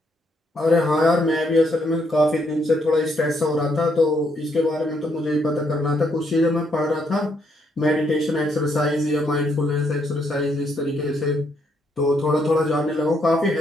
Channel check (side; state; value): both; normal; correlation 0.74